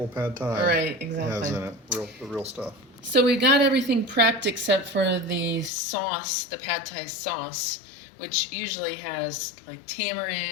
pad thai right, exactly. has in it, the real stuff. So we got everything prepped except for the sauce, the pad thai sauce, which usually has like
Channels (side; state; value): right; drops out; at 5.7 s